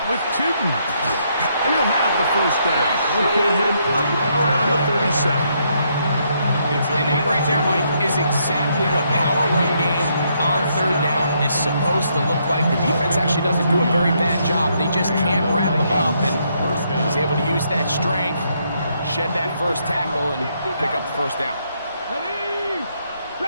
with Tootin. And he'll have the first down. We'll get him up around the 37. And that right there, Mike, is exactly what power run game on third down is supposed to look like. The defense actually doesn't do a very bad job. They just can't wrap them up, and he's able to use that strength, shed that first tackle, and pick up the first down. Ready?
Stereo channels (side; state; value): both; inverted; correlation -0.74